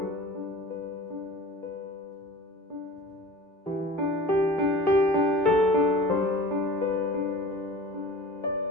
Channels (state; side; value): normal; both; correlation 0.39